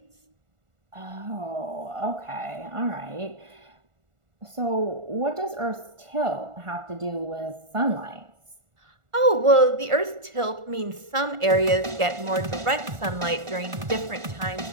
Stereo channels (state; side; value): late; left; 1.4 ms